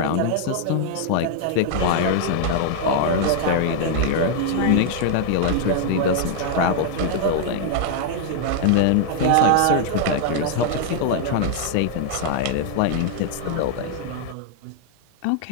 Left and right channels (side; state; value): both; different; correlation 0.00